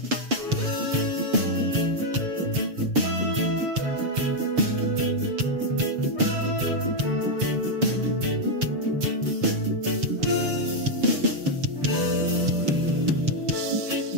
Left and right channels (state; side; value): late; left; 7.0 ms